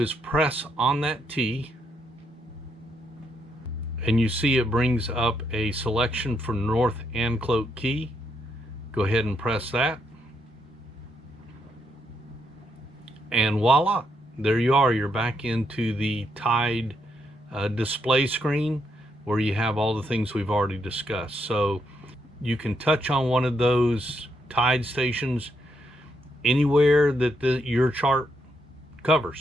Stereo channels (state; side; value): normal; both; correlation 0.78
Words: is press on that T, and you see it brings up a selection for North Anclote Key. Go ahead and press that, and voila, there you are. You're back into the tide display screen where you have all the things we've already discussed. So you can touch on one of those tide stations anywhere that your chart